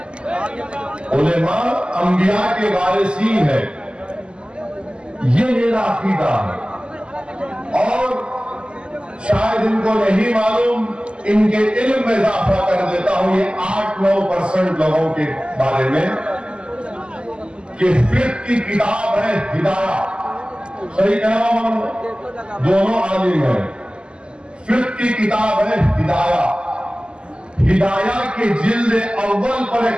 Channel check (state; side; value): late; left; 0.050 ms